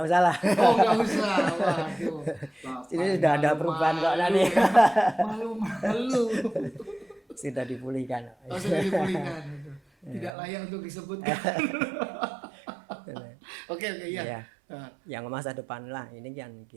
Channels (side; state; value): left; drops out; at 10.3 s